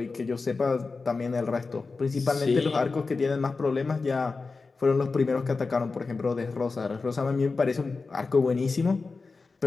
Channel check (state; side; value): quieter; right; 4.2 dB